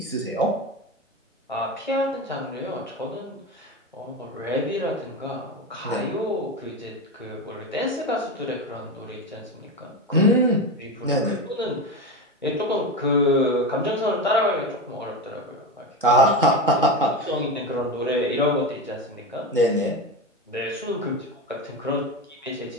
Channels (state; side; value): normal; both; correlation 0.19